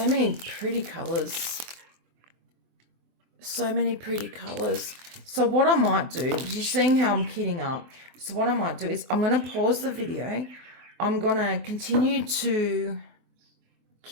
many pretty colours. So many pretty colours. So what I might do, you're seeing how I'm kitting up. So what I might do is I'm going to pause the video. I'm going to continue to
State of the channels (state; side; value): late; left; 24 ms